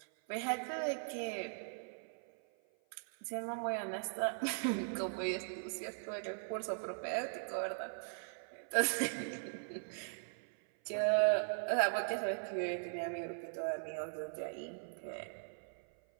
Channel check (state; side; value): silent; left; 51 dB below the other